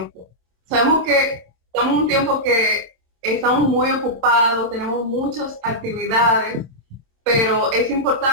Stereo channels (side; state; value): left; late; 26 ms